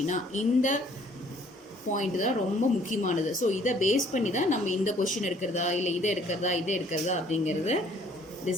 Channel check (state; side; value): normal; both; correlation 0.59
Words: இந்த பாயிண்ட் தான் ரொம்ப முக்கியமானது. ஸோ இதை பேஸ் பண்ணி தான் நம்ம இந்த கொஷின் எடுக்கிறதா இல்லை இதை எடுக்கிறதா அப்படிங்கிறத